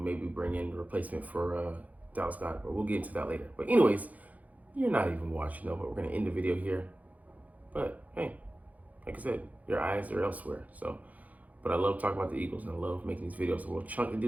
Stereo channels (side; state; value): left; late; 0.076 ms